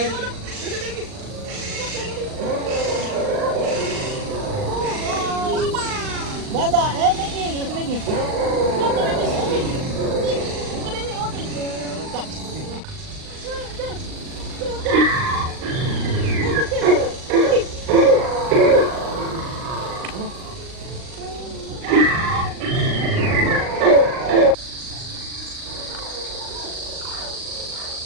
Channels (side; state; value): left; late; 39 ms